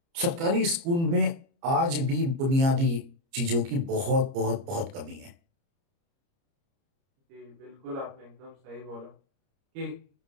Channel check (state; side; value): late; left; 30 ms